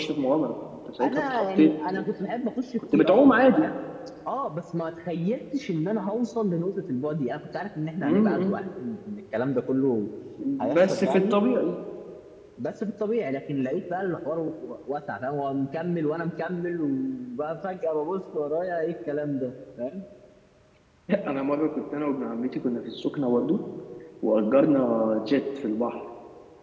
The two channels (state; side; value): identical; both; correlation 1.00